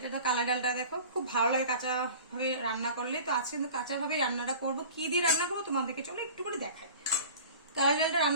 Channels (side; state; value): both; inverted; correlation -0.40